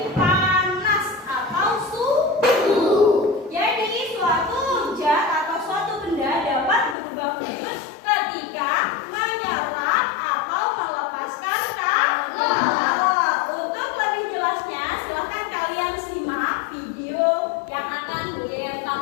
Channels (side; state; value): right; drops out; at 7.0 s